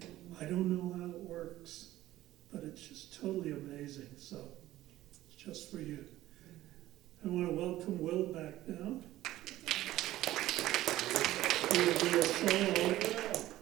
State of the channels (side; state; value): left; quieter; 15.1 dB